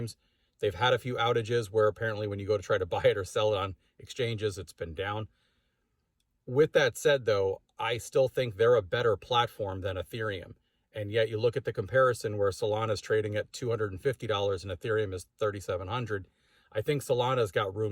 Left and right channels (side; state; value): both; identical; correlation 1.00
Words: They've had a few outages where apparently when you go to try to buy it or sell it on exchanges, it's been down. With that said, though, I still think they're a better platform than Ethereum. And yet you look at the comparison where Solana is trading at $250 and Ethereum is $3,700. I think Solana's got